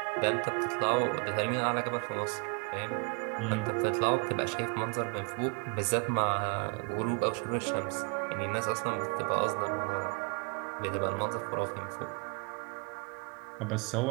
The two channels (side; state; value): left; quieter; 34.6 dB